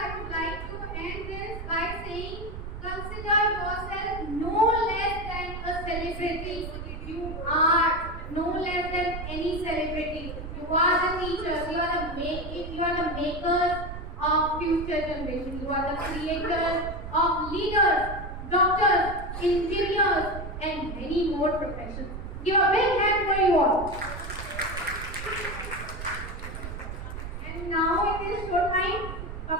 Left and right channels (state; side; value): noise; right; rumble, 8 dB below the sound